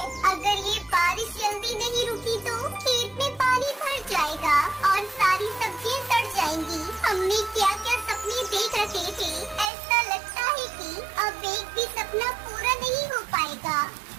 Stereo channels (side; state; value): left; drops out; at 9.7 s